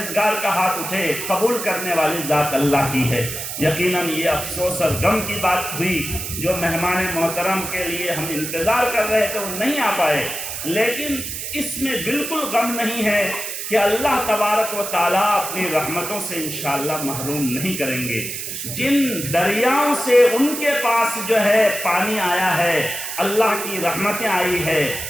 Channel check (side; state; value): right; noise; hiss, 6 dB below the sound